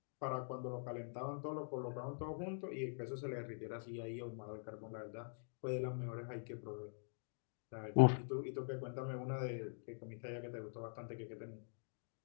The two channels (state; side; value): silent; right; digital silence